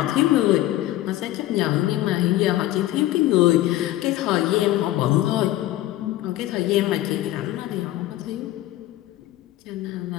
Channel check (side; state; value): right; quieter; 15.1 dB